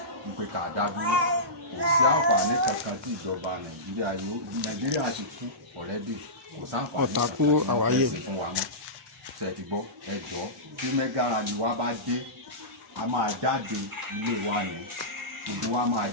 wípé ká dá dúró kò sí àǹfààní kankan tí ìjọba nàìjíríà ti kú ọ̀rẹ́dì kò sáǹfààní Ọ̀tàkù àwáyé fún wa mọ́ ṣe ti gbọ́ ẹjọ́ tí Mega Rally wa bá dé a máa jáde ilé wa ní gbogbo wa máa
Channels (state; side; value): normal; both; correlation -0.18